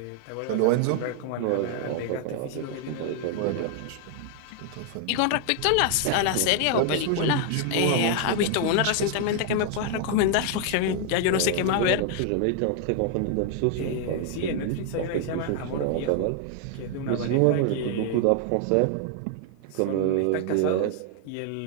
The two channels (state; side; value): different; both; correlation 0.00